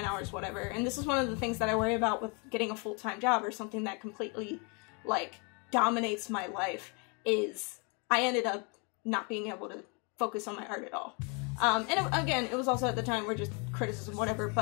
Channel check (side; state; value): right; quieter; 33.9 dB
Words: hours, whatever, and this is one of the things that I worry about with getting a full-time job or something that completely, like, dominates my life, is I ended up not being able to focus on my art at all. And again, it was also at the time where just criticism, whatever,